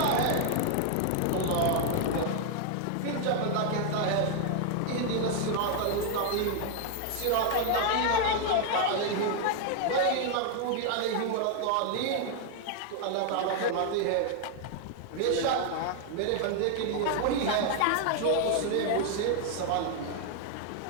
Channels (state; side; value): different; both; correlation 0.00